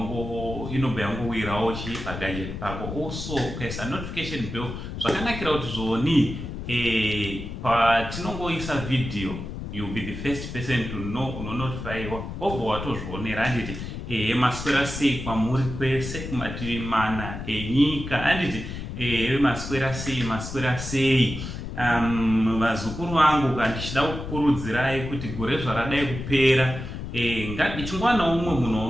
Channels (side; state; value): left; noise; rumble, 7 dB below the sound